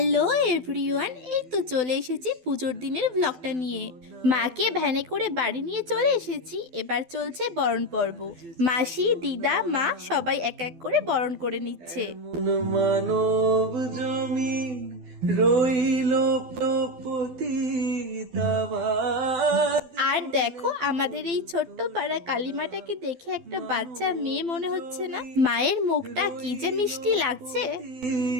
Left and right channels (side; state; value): left; late; 12 ms